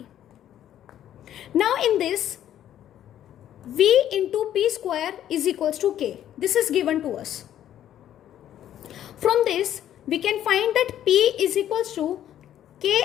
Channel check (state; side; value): quieter; right; 11.2 dB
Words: Now in this, V into P square is equals to K. This is given to us. From this, we can find that P is equals to K